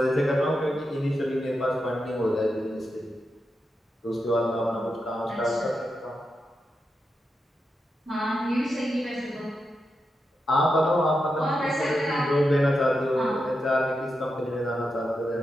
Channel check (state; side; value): normal; both; correlation 0.87